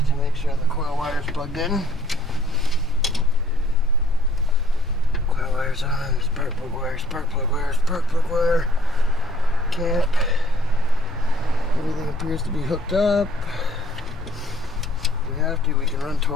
make sure the coil wire's plugged in. Coil wire's on, spark plug wire, spark plug wire, spark plug wire, cap. Everything appears to be hooked up. If we have to, we can run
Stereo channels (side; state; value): both; normal; correlation 0.61